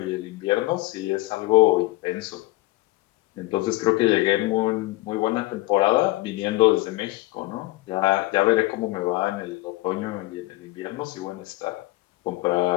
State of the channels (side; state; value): right; quieter; 19.9 dB